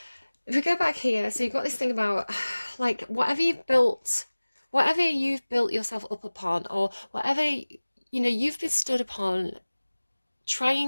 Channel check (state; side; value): inverted; both; correlation -1.00